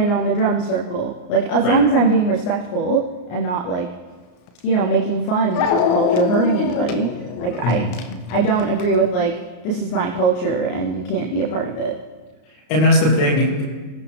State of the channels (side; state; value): right; late; 33 ms